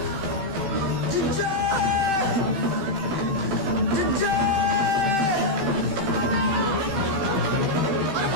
जिज्जा, जिज्जा। अरे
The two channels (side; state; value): left; late; 15 ms